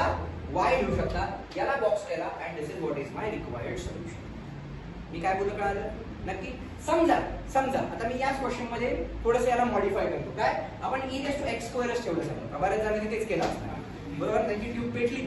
y लिहू शकता, याला बॉक्स केला, and this is what is my required solution. मी काय बोलतो कळालं नक्की. समजा आता मी याच क्वेश्चन मध्ये थोडंसं याला मॉडिफाय करतो. काय, आपण e रेस टू x स्क्वेअरच ठेवलं समजा, बऱ्याच जणांनी तेच केलं असणार, बरोबर, त्यांची ट्यूब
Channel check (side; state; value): both; identical; correlation 1.00